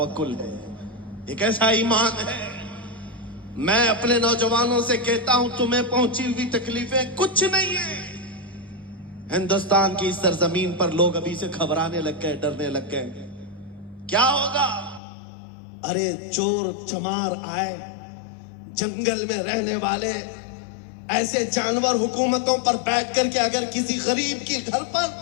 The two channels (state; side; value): drops out; right; at 15.0 s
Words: ہے, یہ کیسا ایمان ہے. میں اپنے نوجوانوں سے کہتا ہوں تمہیں پہنچی ہوئی تکلیفیں کچھ نہیں ہیں. ہندوستان کی اس سرزمین پر لوگ ابھی سے گھبرانے لگ گئے, ڈرنے لگ گئے. کیا ہوگا؟ ارے چور چمار آئے, جنگل میں رہنے والے ایسے جانور حکومتوں پر بیٹھ کر کے اگر کسی غریب کی گھر پر